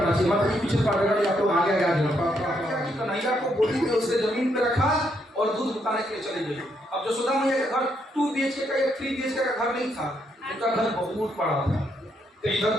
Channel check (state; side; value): normal; both; correlation 0.76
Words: चाहिए। मतलब पीछे पढ़ेगा या तो आगे कन्हैया को गोदी में उसे जमीन पे रखा और दूध उतारने के लिए चले गए। अब यशोदा मैया का घर 2 BHK का या 3 BHK का घर नहीं था, उनका घर बहुत बड़ा था। तो इधर